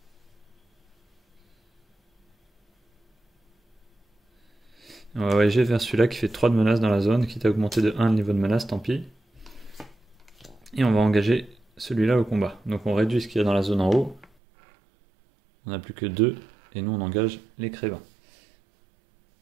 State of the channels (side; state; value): left; drops out; at 14.2 s